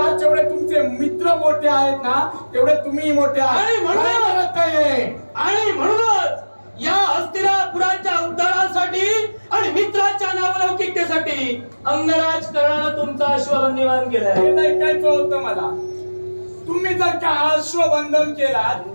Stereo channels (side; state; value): both; inverted; correlation -1.00